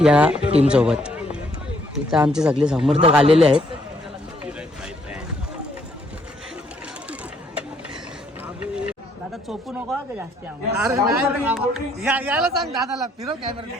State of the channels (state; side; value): normal; both; correlation 0.68